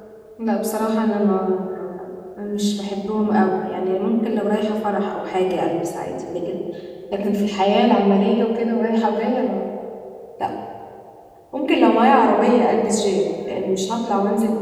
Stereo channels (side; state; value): both; identical; correlation 1.00